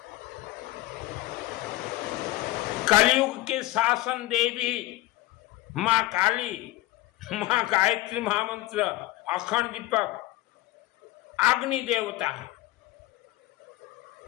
कलयुग के शासन देवी माँ काली, माँ गायत्री महामंत्र, अखंड दीपक, अग्नि देवता है।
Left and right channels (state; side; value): quieter; right; 17.2 dB